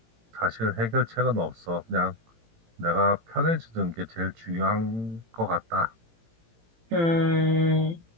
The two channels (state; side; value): late; left; 18 ms